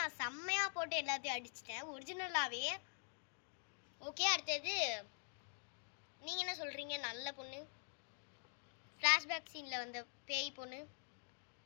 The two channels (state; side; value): silent; right; digital silence